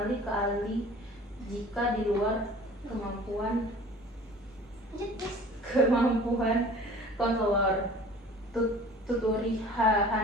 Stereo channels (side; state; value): both; normal; correlation 0.46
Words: ke ahli jika di luar kemampuan konselor. Tuturi